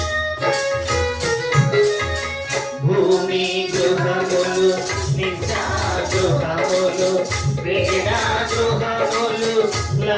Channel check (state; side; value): identical; both; correlation 1.00